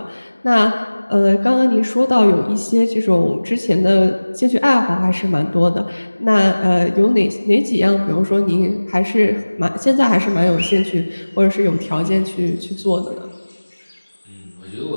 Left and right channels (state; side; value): inverted; both; correlation -1.00